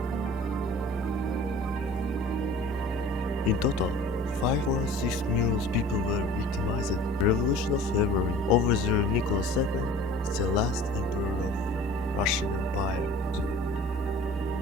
In total, 5.6 million people were victimized. The Revolution of February overthrew Nicholas II, the last emperor of Russian Empire.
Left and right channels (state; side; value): normal; both; correlation 0.45